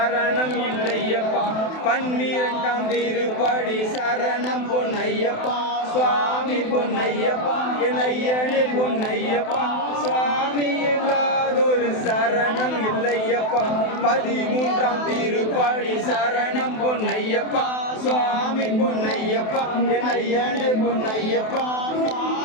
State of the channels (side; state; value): right; late; 28 ms